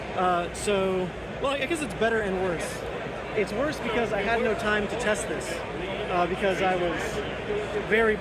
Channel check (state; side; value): identical; both; correlation 1.00